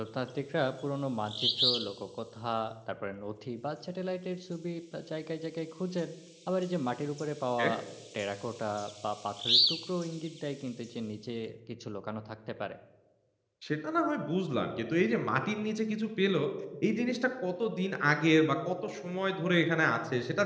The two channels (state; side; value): identical; both; correlation 1.00